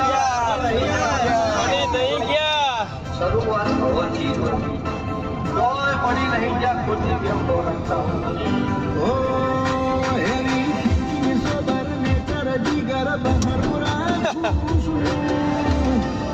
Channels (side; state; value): both; identical; correlation 1.00